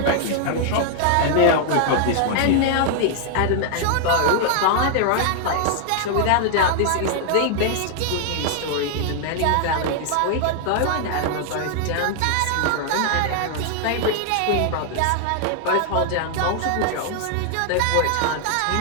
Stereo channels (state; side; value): different; both; correlation 0.00